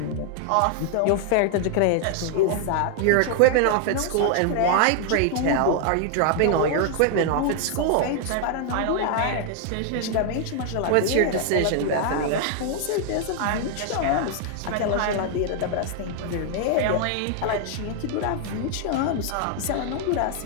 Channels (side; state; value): both; different; correlation 0.00